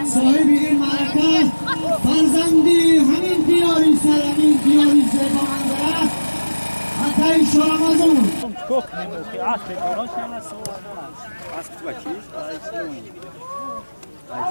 صاحب این معرکه فرزندی همین دیاری سرمین دیاری زیبا منظره حتی شورمازون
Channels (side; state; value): both; inverted; correlation -1.00